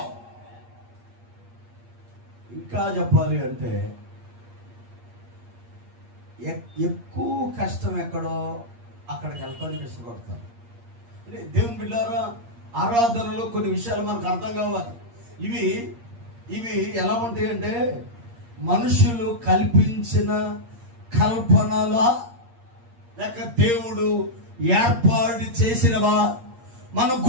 ఇంకా చెప్పాలి అంటే ఎక్కువ కష్టం ఎక్కడో అక్కడికి వెళ్తానికి ఇష్టపడతారు. దేవుని బిడ్డారా, ఆరాధనలో కొన్ని విషయాలు మనకు అర్థం కావాలి. ఇవి ఎలా ఉంటాయి అంటే మనుషులు కల్పించిన కల్పనలా లేక దేవుడు ఏర్పాటు చేసినవా మనం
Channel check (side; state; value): left; late; 8.6 ms